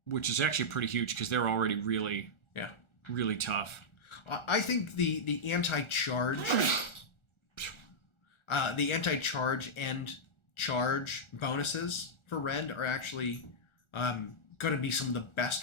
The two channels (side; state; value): right; late; 1.4 ms